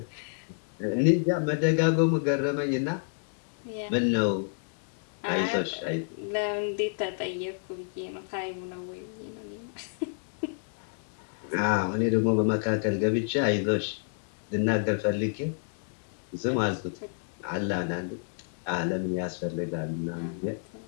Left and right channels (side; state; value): right; silent; digital silence